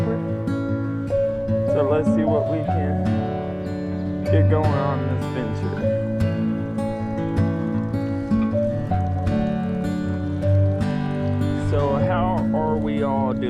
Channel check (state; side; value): identical; both; correlation 1.00